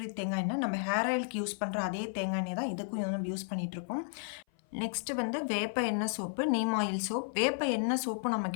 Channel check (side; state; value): right; silent; 56 dB below the other